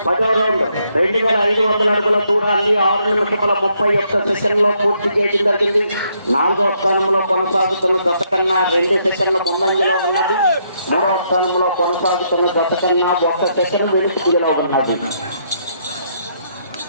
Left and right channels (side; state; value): both; inverted; correlation -0.73